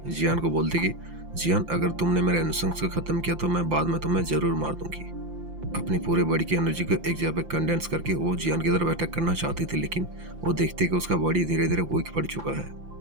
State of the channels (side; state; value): left; late; 5.8 ms